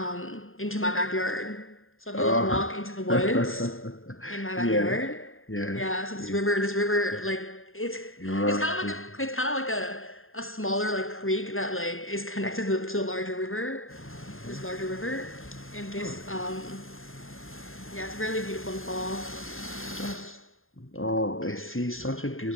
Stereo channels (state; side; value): late; right; 0.60 ms